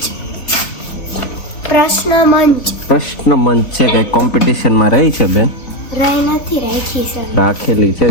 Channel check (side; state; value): right; late; 3.8 ms